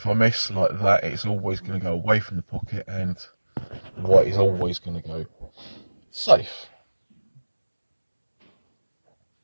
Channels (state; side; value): inverted; both; correlation -1.00